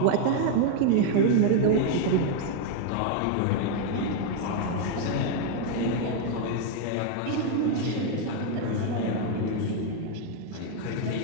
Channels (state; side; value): different; both; correlation 0.01